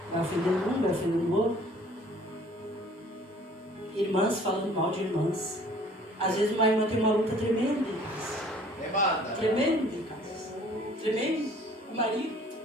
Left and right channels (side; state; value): both; normal; correlation 0.54